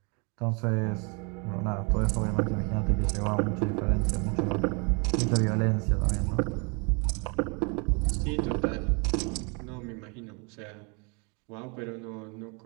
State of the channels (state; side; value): quieter; left; 33.1 dB